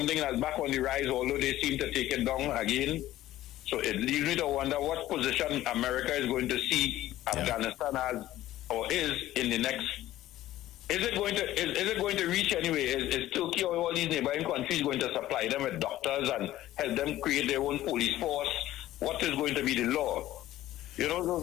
that's back on the rise, although they seem to take it down again. So it leaves me to wonder what position America is going to see Afghanistan as, or is in the next. Is it going to reach anyway? Is Turkey or all these neighboring countries going to supply them with doctors and help them create their own police force? What is going to be the law? You know,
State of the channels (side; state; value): right; quieter; 14.5 dB